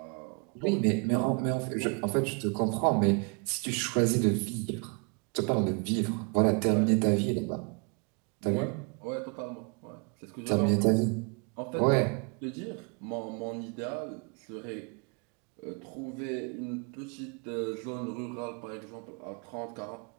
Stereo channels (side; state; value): left; quieter; 36.0 dB